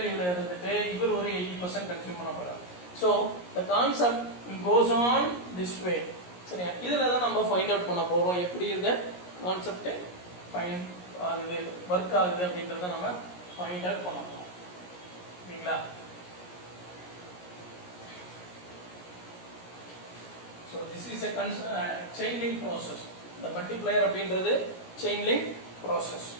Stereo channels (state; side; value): late; right; 17 ms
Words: இருந்துட்டு இவர் ஒரு 80% கன்சியூம் பண்ண போறாரு. So the concept goes on this way. சரியா? இதுல தான் நம்ம ஃபைண்ட் அவுட் பண்ண போறோம் எப்படி இந்த கான்செப்ட் ஃபைண்ட் ஆகுது வர்க் ஆகுது அப்படின்றத நம்ம ஃபைண்ட் அவுட் பண்ண போறோம். சரிங்களா? So this is a chain link process. The multiplier அப்படின்றது chain link process.